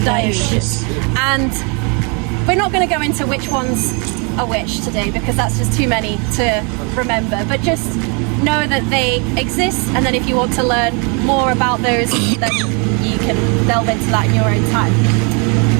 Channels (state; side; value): quieter; left; 34.1 dB